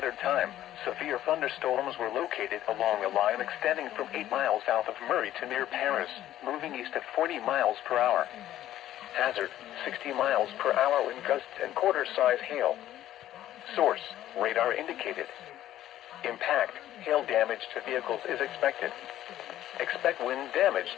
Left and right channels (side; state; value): right; quieter; 12.9 dB